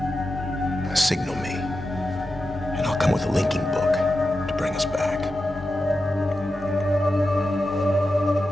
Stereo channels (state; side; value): normal; both; correlation 0.91